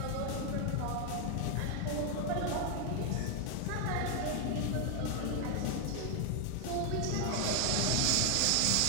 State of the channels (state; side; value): different; both; correlation 0.00